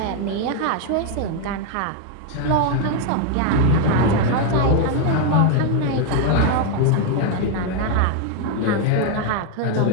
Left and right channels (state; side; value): different; both; correlation 0.01